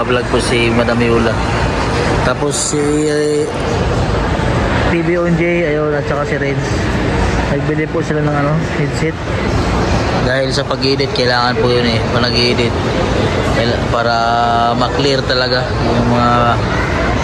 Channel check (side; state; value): both; identical; correlation 1.00